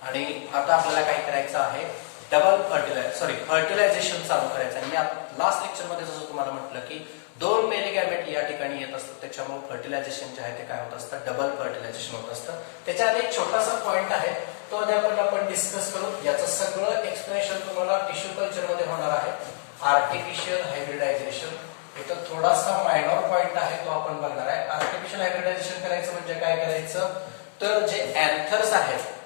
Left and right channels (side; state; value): right; silent; 60 dB below the other